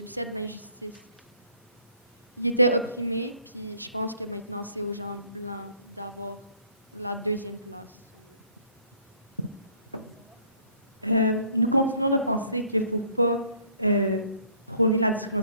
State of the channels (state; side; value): inverted; both; correlation -0.60